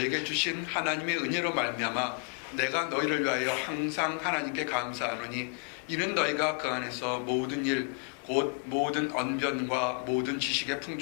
주신 하나님의 은혜로 말미암아 내가 너희를 위하여 항상 하나님께 감사하노니 이는 너희가 그 안에서 모든 일 곧 모든 언변과 모든 지식의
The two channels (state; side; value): quieter; right; 36.9 dB